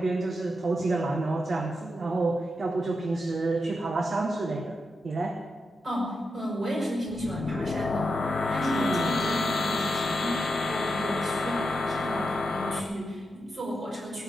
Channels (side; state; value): both; normal; correlation 0.86